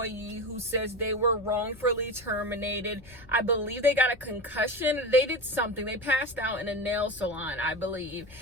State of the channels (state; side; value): noise; right; rumble, 27 dB below the sound